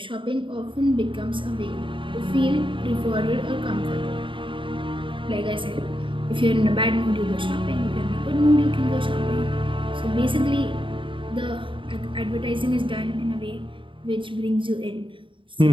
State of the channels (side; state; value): left; late; 0.25 ms